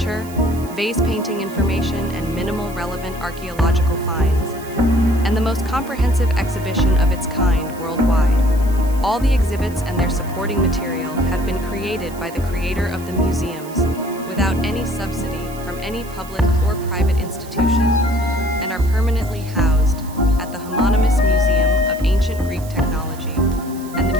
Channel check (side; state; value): right; noise; hiss, 19 dB below the sound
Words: vase painting information, and minimal relevant archaeological finds, and the most comprehensive exhibition of its kind worldwide. All the exhibits and their supporting material have been created by the creator of the museums without any subsidy from any public or private institution, and are permanently housed at the homonymous Museum of Ancient Greek Technology and the